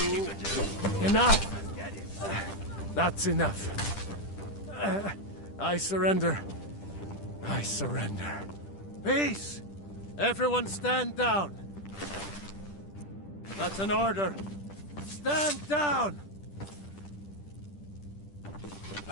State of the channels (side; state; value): right; late; 10 ms